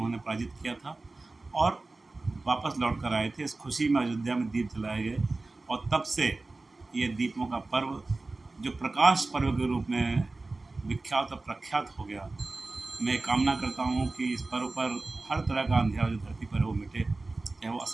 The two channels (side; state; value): left; quieter; 3.3 dB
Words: पराजित किया था और वापस लौट कर आए थे। इस खुशी में अयोध्या में दीप जलाए गए और तब से ये दीपों का पर्व जो प्रकाश पर्व के रूप में विख्यात और प्रख्यात हो गया। मैं कामना करता हूँ कि इस पर्व पर हर तरह का अंधेरा जो धरती पर है वो मिटे, चाहे वो